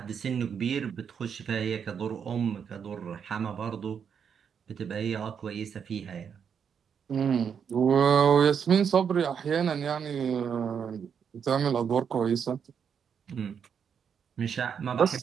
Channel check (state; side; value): quieter; left; 7.3 dB